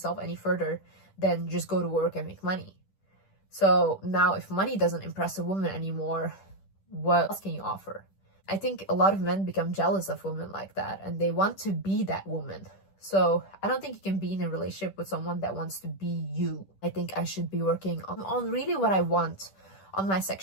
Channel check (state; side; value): late; right; 10 ms